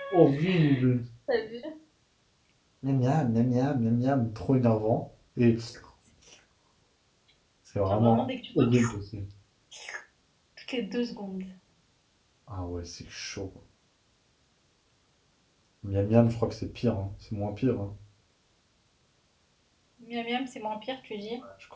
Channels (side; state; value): both; identical; correlation 1.00